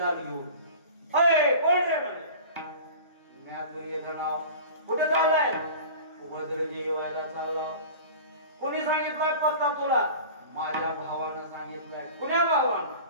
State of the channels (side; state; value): both; inverted; correlation -0.38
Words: घेऊन, अय कोण रे म्हणजे? म्या दुर्योधना. कुठे चाललाय? वज्रदेही व्हायला चालला. कोणी सांगितलंय पत्ता तुला? माझ्या भावानं सांगितलंय. कुण्या भावानं?